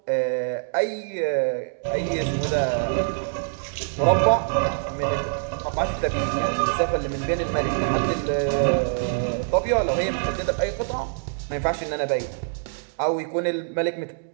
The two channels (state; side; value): silent; left; digital silence